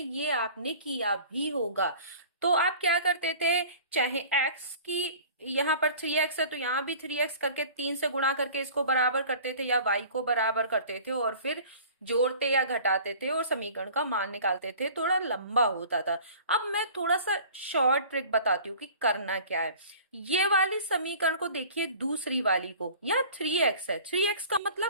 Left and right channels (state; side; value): inverted; both; correlation -0.45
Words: आपने किया भी होगा। तो आप क्या करते थे, चाहे x की यहाँ पर 3x है तो यहाँ भी 3x करके 3 से गुणा करके इसको बराबर करते थे या y को बराबर करते थे और फिर जोड़ते या घटाते थे और समीकरण का मान निकालते थे। थोड़ा लंबा होता था। अब मैं थोड़ा सा शॉर्ट ट्रिक बताती हूँ कि करना क्या है। ये वाली समीकरण को देखिए, दूसरी वाली को, यहाँ 3x है। 3x का